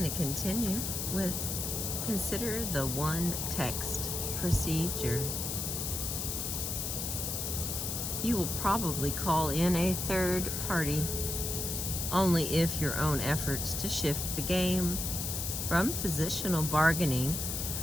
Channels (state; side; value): noise; left; hiss, 2 dB below the sound